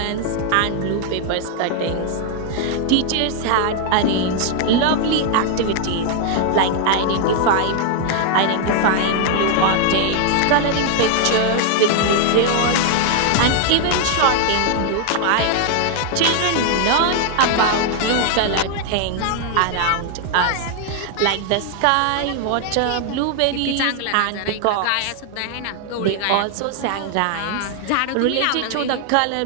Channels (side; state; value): both; different; correlation 0.00